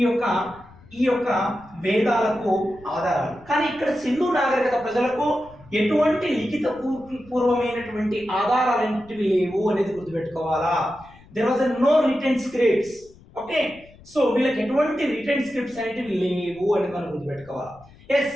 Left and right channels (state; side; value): noise; left; rumble, 24 dB below the sound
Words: యొక్క వేదాలకు ఆధారాలు. కానీ ఇక్కడ సింధు నాగరికత ప్రజలకు ఎటువంటి లిఖిత పూర్వమైనటువంటి ఆధారాలు ఏంటివి లేవు అనేది గుర్తుపెట్టుకోవాలా. There was no written scripts. Okay, so వీళ్ళకి ఎటువంటి రిటెన్ స్క్రిప్ట్స్ అనేటివి లేవు అనేది మనం గుర్తుపెట్టుకోవాలి. ఎస్,